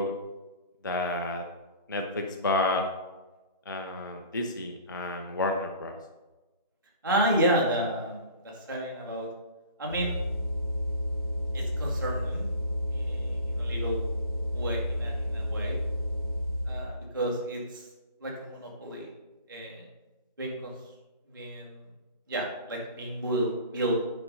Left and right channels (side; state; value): both; inverted; correlation -0.44